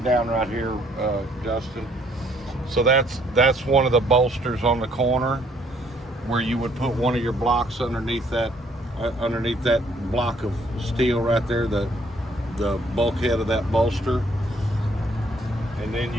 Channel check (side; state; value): both; normal; correlation 0.64